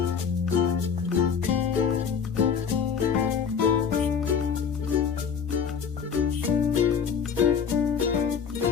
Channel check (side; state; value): right; quieter; 6.8 dB